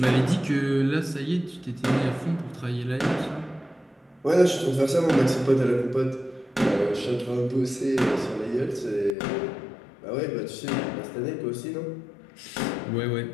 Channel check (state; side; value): drops out; right; at 9.2 s